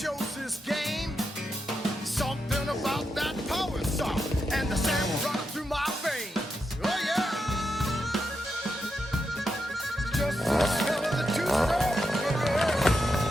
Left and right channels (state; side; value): normal; both; correlation 0.85